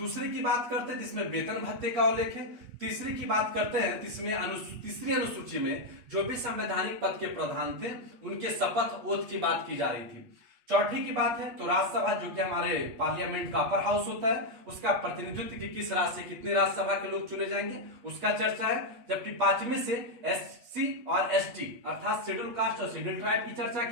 की बात करते हैं जिसमें वेतन भत्ते का उल्लेख है। तीसरी की बात करते हैं जिसमें तीसरी अनुसूची में जो भी संवैधानिक पद के प्रधान थे उनके शपथ ओथ की बात की जा रही थी। चौथी की बात है तो राज्यसभा, जो कि हमारे पार्लियामेंट का अपर हाउस होता है, उसका प्रतिनिधित्व कि किस राज्य से कितने राज्यसभा के लोग चुने जाएंगे उसका चर्चा है। जबकि 5वें से एससी और एसटी अर्थात शेड्यूल कास्ट और शेड्यूल ट्राइब की चर्चा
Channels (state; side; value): late; left; 8.3 ms